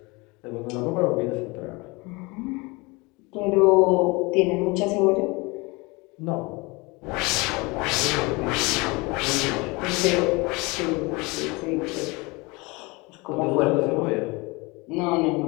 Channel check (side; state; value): right; quieter; 25.7 dB